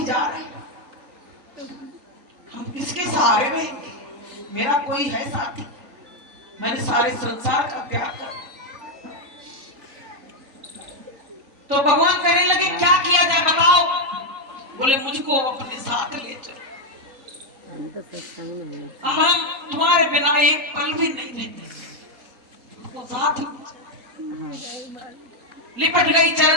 जा रहे हैं। हम किसके सहारे रहेंगे, मेरा कोई है साथी, मैंने सारे संसार का त्याग कर दिया। तो भगवान कहने लगे क्या किया जाए बताओ। बोले मुझको अपने साथ ले चलो, अब हम तुम्हारे बिना एक पल भी नहीं रहते। वो साथ लिपट गई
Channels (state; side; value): late; left; 3.8 ms